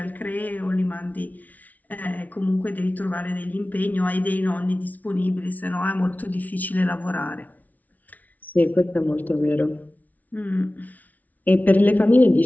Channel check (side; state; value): right; late; 0.075 ms